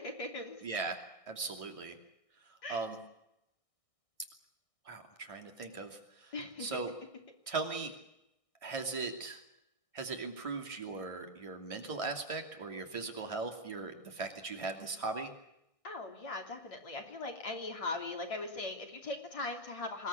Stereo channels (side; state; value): right; late; 1.6 ms